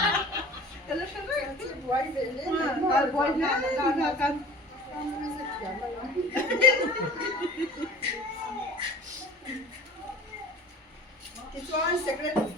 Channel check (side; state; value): both; normal; correlation 0.41